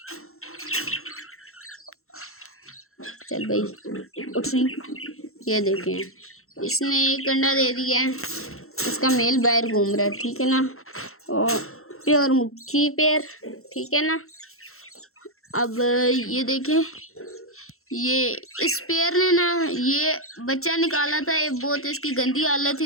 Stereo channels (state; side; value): late; right; 0.62 ms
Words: चल भाई उठ रही। ये देखें इसने एक अंडा दे दिया है, इसका मेल बाहर घूम रहा है, ठीक है ना। और प्योर मुखी पेयर, ठीक है ना। अब ये देखें, ये इस पेयर ने ना ये बच्चा निकाला था। ये बहुत इसकी गंदी हालत